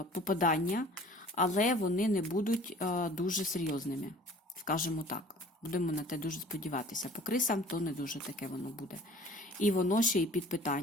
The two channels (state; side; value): normal; both; correlation 0.48